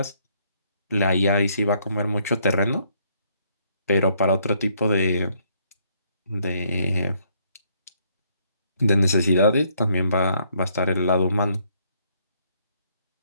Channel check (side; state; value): both; inverted; correlation -0.70